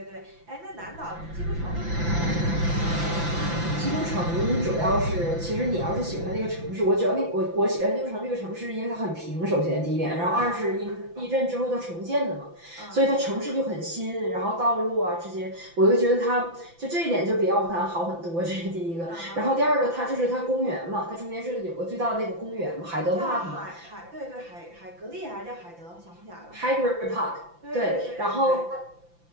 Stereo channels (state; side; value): late; left; 5.9 ms